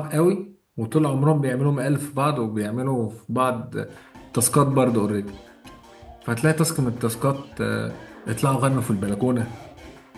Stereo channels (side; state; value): both; identical; correlation 1.00